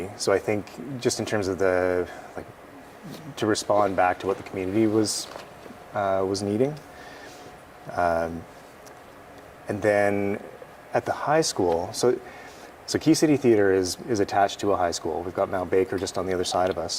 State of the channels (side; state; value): both; identical; correlation 1.00